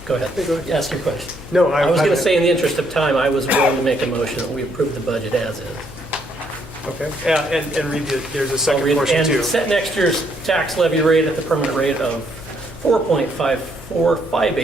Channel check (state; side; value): noise; left; hum, 17 dB below the sound